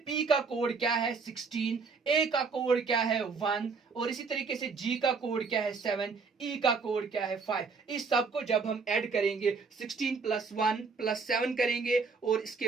का कोड क्या है? 16, ए का कोड क्या है? 1, और इसी तरीके से जी का कोड क्या है? 7, ई का कोड क्या है? 5। इस सब को जब हम ऐड करेंगे 16 प्लस 1 प्लस 7 करेंगे और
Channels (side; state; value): left; quieter; 4.8 dB